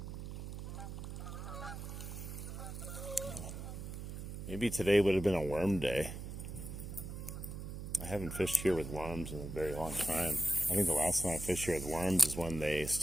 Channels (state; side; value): noise; right; hum, 7 dB below the sound